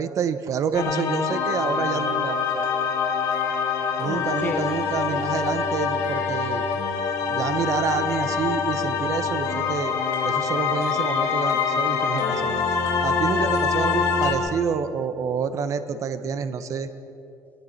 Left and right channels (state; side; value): normal; both; correlation 0.44